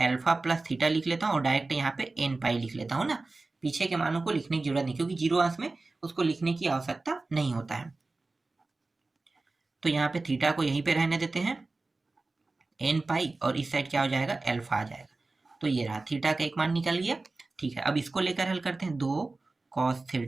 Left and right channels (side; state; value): left; quieter; 3.4 dB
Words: प्लस थीटा लिख लेता हूँ और डायरेक्ट यहाँ पे एन पाई लिख लेता हूँ ना। पीछे के मानों को लिखने की जरूरत नहीं, क्योंकि 0 अंश में उसको लिखने की आवश्यकता नहीं होता है। तो यहाँ पे थीटा को यहीं पे रहने देते हैं, एन पाई, और इस साइड क्या हो जाएगा, एल्फा आ जाएगा। तो ये रहा, थीटा का एक मान निकल गया। ठीक है, अब इसको लेकर हल करते हैं, 2 कॉस